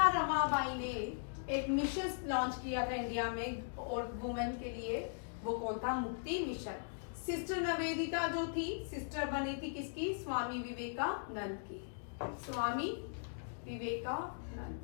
रमाबाई ने एक मिशन लॉन्च किया था इंडिया में और वुमेन के लिए, वो कौन था, मुक्ति मिशन। सिस्टर निवेदिता जो थी, सिस्टर बनी थी किसकी, स्वामी विवेकानंद की, स्वामी विवेकानंद,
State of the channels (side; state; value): right; silent; digital silence